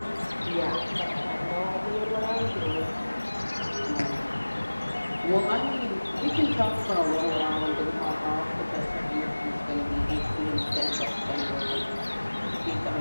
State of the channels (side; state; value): both; inverted; correlation -1.00